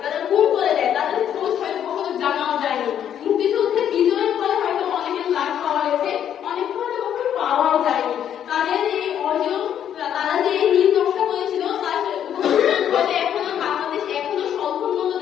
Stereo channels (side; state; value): right; quieter; 9.7 dB